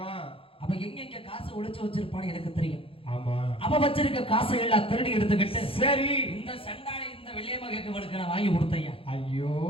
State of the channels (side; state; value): right; late; 0.27 ms